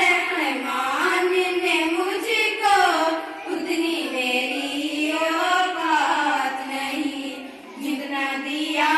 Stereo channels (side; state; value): both; identical; correlation 1.00